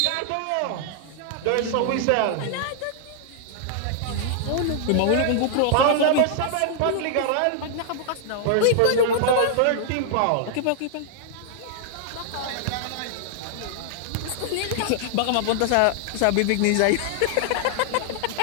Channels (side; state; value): both; different; correlation -0.01